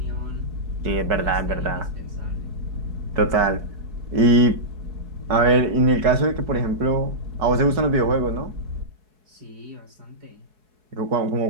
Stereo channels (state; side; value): late; left; 4.7 ms